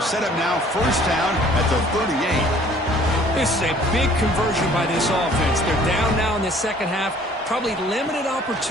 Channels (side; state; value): both; normal; correlation 0.55